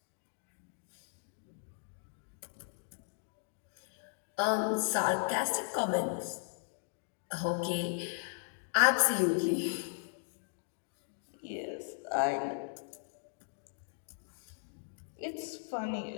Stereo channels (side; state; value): right; silent; digital silence